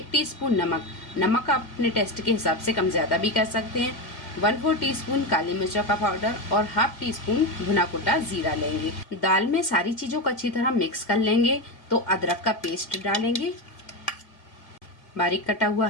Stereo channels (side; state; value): right; late; 1.9 ms